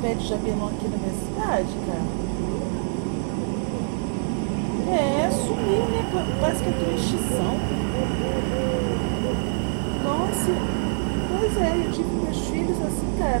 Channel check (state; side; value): silent; left; digital silence